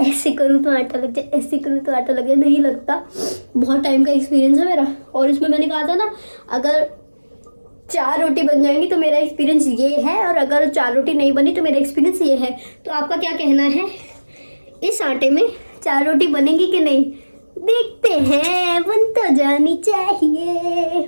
ऐसे करूँ तो आटा लग जाए, ऐसे करूँ तो आटा लग जाए, नहीं लगता। बहुत टाइम का एक्सपीरियंस है मेरा। और इसमें मैंने कहा था ना, अगर 4 रोटी बन जाएंगी तो मेरा एक्सपीरियंस ये है, और अगर 4 रोटी नहीं बनी तो मेरा एक्सपीरियंस ये है। तो आपका क्या कहना है, इस आटे में 4 रोटी बनेगी कि नहीं? देखते हैं, बन तो जानी चाहिए।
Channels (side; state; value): both; inverted; correlation -1.00